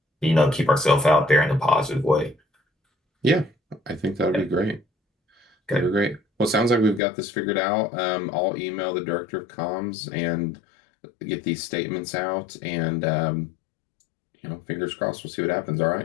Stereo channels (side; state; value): right; drops out; at 7.0 s